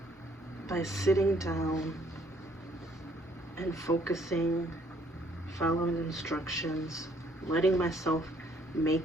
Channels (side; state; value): both; normal; correlation 0.64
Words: by sitting down and focusing, following instructions, letting myself